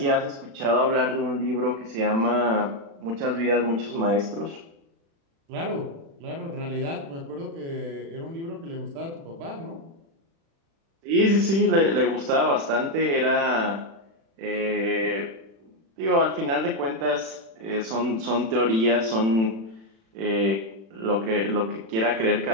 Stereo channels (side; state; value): left; late; 36 ms